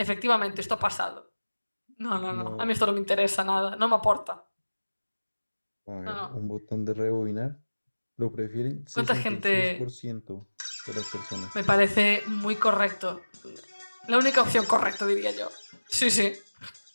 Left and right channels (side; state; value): both; inverted; correlation -1.00